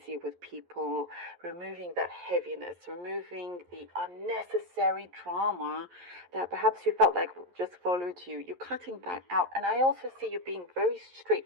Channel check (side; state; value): left; late; 11 ms